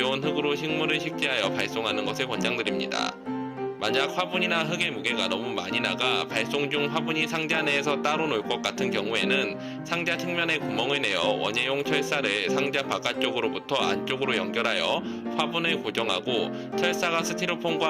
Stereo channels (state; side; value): identical; both; correlation 1.00